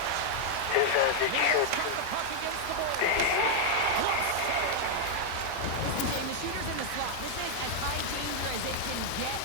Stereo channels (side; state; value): both; different; correlation 0.00